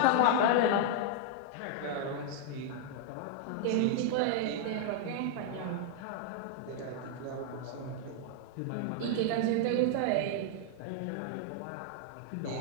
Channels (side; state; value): both; different; correlation 0.00